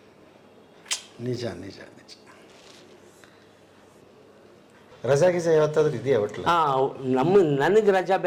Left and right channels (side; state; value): both; identical; correlation 1.00